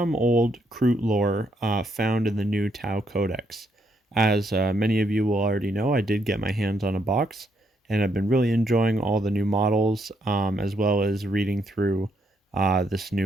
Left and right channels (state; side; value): normal; both; correlation 0.75